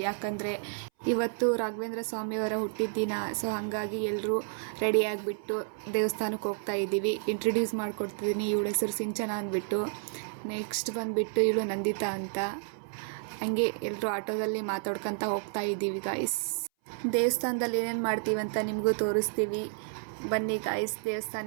ಯಾಕಂದರೆ ಇವತ್ತು ರಾಘವೇಂದ್ರ ಸ್ವಾಮಿಯವರ ಹುಟ್ಟಿದ ದಿನ. ಸೊ ಹಾಗಾಗಿ ಎಲ್ಲರೂ ರೆಡಿ ಆಗಿಬಿಟ್ಟು ದೇವಸ್ಥಾನಕ್ಕೆ ಹೋಗ್ತಾ ಇದ್ದೀವಿ. ಇಂಟ್ರಡ್ಯೂಸ್ ಮಾಡಿಕೊಡ್ತಿದ್ದೀನಿ. ಇವಳ ಹೆಸರು ಸಿಂಚನ ಅಂದ್ಬಿಟ್ಟು. ನೆಕ್ಸ್ಟ್ ಬಂದುಬಿಟ್ಟು ಇವಳು ನಂದಿತಾ ಅಂತ. ಹಂಗೆ ಎಲ್ಲರೂ ಆಟೋದಲ್ಲಿ ಮಾತಾಡ್ಕೊತ ಹೋಗ್ತಾ ಇದ್ದೀವಿ ಗಾಯ್ಸ್. ದೇವಸ್ಥಾನದಲ್ಲಿ ಏನೇನು ಮಾಡ್ತೀವಿ ಅಂತ ನಿಮಗೂ ತೋರಿಸ್ತೀವಿ. ಬನ್ನಿ ಗಾಯ್ಸ್,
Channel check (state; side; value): silent; left; 57 dB below the other